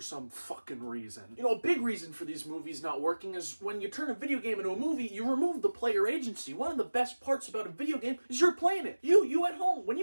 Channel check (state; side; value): inverted; both; correlation -1.00